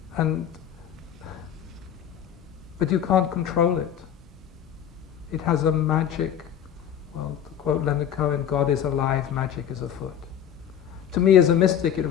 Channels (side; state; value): right; quieter; 9.5 dB